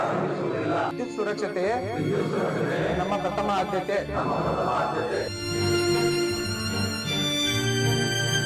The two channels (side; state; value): both; identical; correlation 1.00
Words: ವಿದ್ಯುತ್ ಸುರಕ್ಷತೆಯೇ ನಮ್ಮ ಪ್ರಥಮ ಆದ್ಯತೆ.